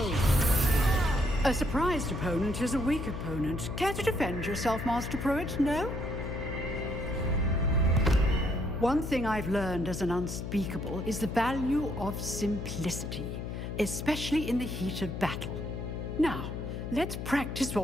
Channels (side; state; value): left; noise; hum, 6 dB below the sound